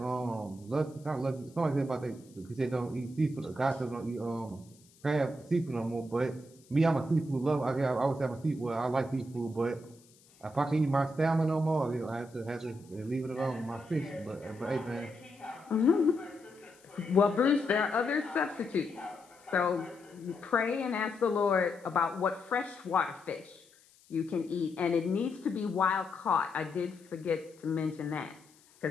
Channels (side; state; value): left; noise; hiss, 28 dB below the sound